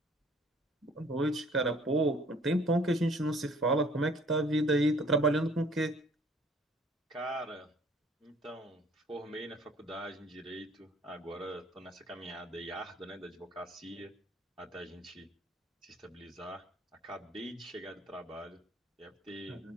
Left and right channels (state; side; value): normal; both; correlation 0.56